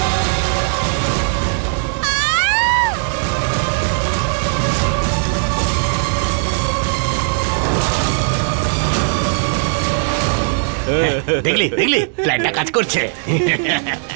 দেখলি দেখলি প্ল্যানটা কাজ করছে।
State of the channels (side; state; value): left; silent; digital silence